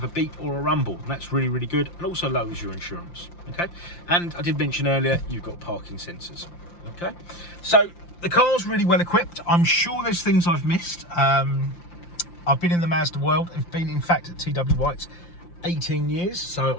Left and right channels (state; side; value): late; right; 5.8 ms